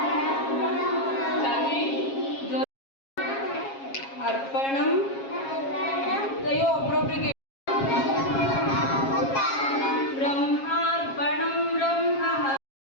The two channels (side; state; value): right; late; 7.4 ms